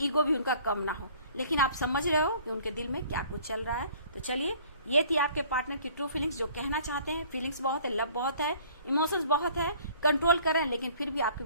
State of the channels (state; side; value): inverted; both; correlation -0.54